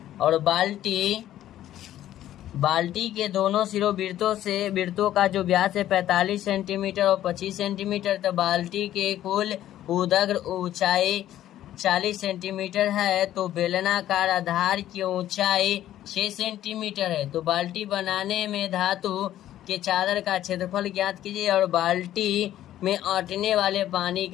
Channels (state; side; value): quieter; right; 12.6 dB